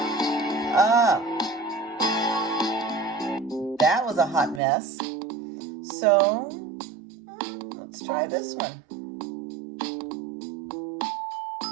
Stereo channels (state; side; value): drops out; left; at 4.6 s